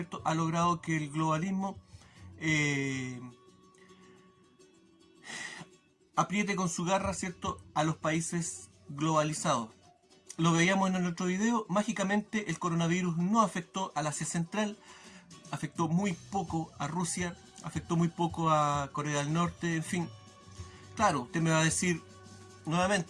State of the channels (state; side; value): identical; both; correlation 1.00